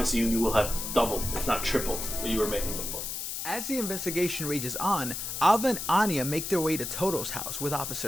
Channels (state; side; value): noise; left; hiss, 5 dB below the sound